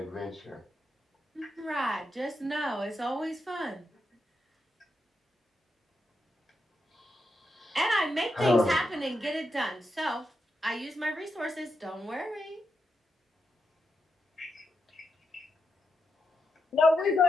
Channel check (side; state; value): both; normal; correlation 0.85